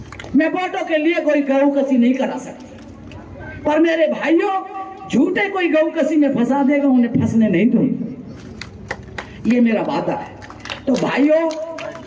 मैं वोटों के लिए कोई गऊ कसी नहीं करा सकती, पर मेरे भाइयों झूठे कोई गऊ कसी में फंसा देगा, उन्हें फंसने नहीं दूंगी, ये मेरा वादा है। तो भाइयों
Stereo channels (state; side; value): identical; both; correlation 1.00